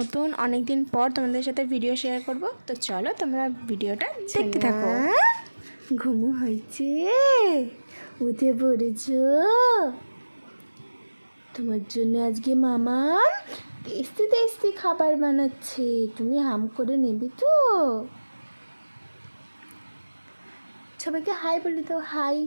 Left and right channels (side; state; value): both; inverted; correlation -1.00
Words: অনেক দিন পর তোমাদের সাথে ভিডিও শেয়ার করব। তো চলো তোমরা ভিডিওটা দেখতে থাকো। ঘুমো হয়েছে, উঠে পড়েছো? তোমার জন্য আজকে মামা টেস্টি টেস্টি খাবার বানাচ্ছে, তুমি হাম করে নেবে তো? সবাইকে হাই বলে দাও, হাই